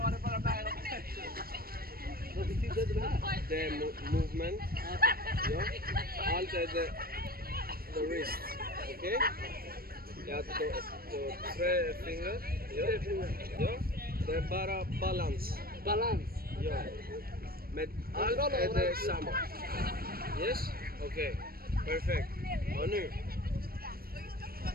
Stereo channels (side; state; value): left; late; 0.44 ms